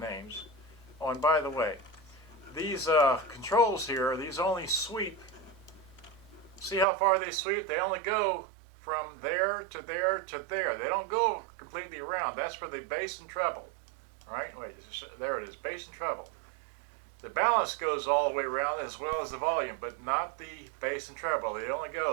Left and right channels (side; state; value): left; drops out; at 6.9 s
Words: Oh, and by the way, these controls here, these only sweep. See how far they sweep? They only go from there to there to there. They don't go completely around. That's for the bass and treble. All right, wait, there it is, bass and treble. The balance goes all the way around as well as the volume, but not the bass and treble. They only